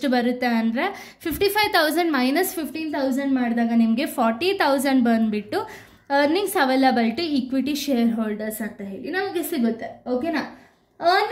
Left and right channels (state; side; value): identical; both; correlation 1.00